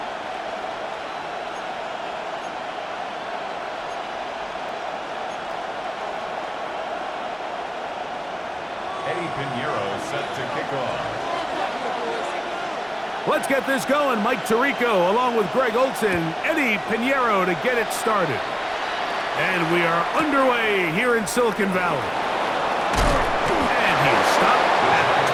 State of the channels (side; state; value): both; identical; correlation 1.00